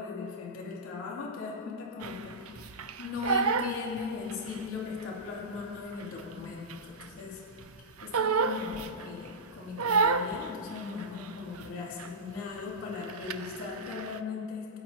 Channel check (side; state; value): both; normal; correlation -0.13